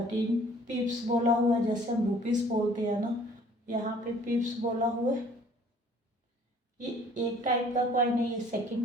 पिप्स बोला हुआ है, जैसे हम रुपीज़ बोलते हैं ना, यहाँ पे पिप्स बोला हुआ है। ये एक टाइप का कॉइन है, ये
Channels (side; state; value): both; normal; correlation 0.55